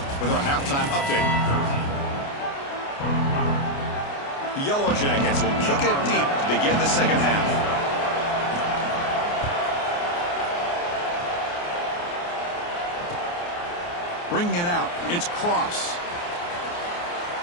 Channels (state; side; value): late; right; 29 ms